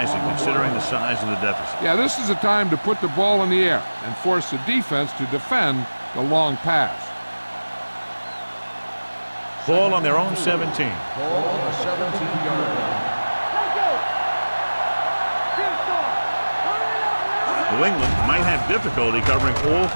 considering the size of the deficit. Yeah, this is a time to put the ball in the air and force the defense to defend the long pass. Ball on their own 17. Ball on the 17-yard line. New England might have difficulty covering all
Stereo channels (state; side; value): inverted; both; correlation -1.00